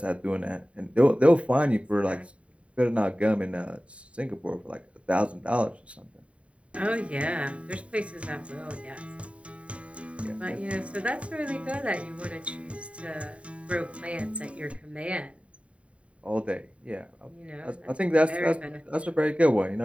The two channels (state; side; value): late; left; 0.063 ms